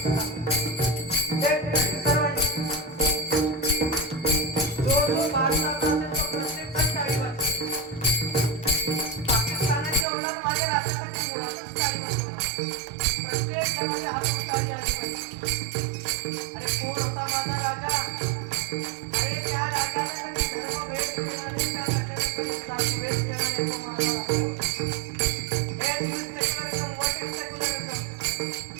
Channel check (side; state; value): left; drops out; at 10.1 s